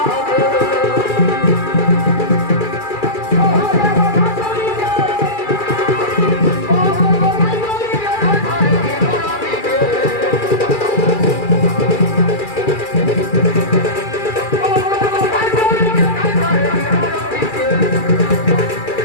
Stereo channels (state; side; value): late; right; 2.4 ms